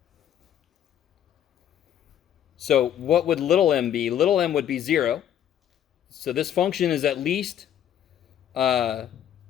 So what would little m be? Little m would be 0. So this function is at least 0,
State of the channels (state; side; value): quieter; right; 10.2 dB